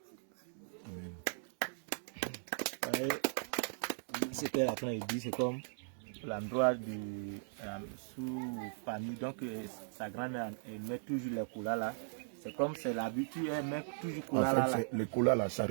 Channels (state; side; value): silent; left; digital silence